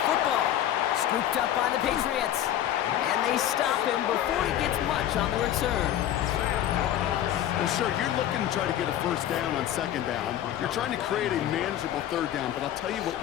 football. Scooped up by the Patriots. And they stop him before he gets much on the return. Well, sure, you're looking to try to get a first down on second down. You're trying to create a manageable third down, but I'll tell you what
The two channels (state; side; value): quieter; right; 11.7 dB